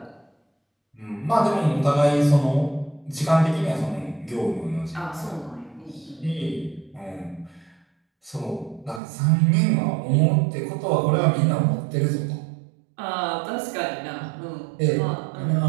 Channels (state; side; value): drops out; left; at 9.0 s